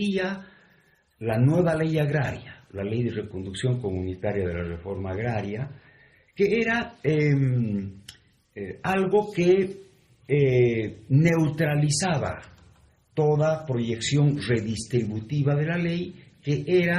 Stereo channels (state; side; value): identical; both; correlation 1.00